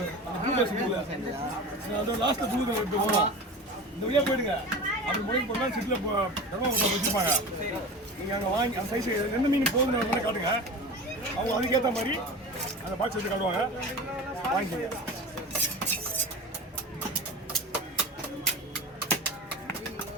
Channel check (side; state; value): both; normal; correlation 0.32